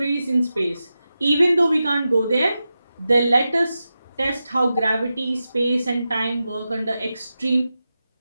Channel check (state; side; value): inverted; both; correlation -0.91